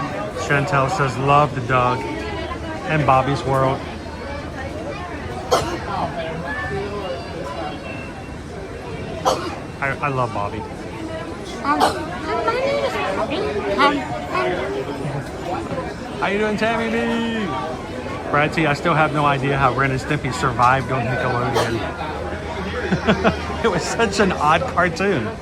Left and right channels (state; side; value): identical; both; correlation 1.00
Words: Chantel says, love the Doug. And Bobby's World. I love Bobby. How you doing, Tammy B? Brad T, I still have no idea how Ren and Stimpy survived on Nickelodeon. It was such an odd cartoon.